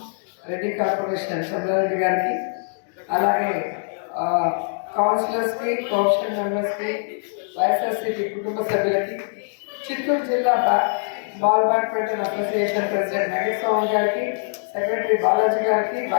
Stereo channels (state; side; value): silent; right; digital silence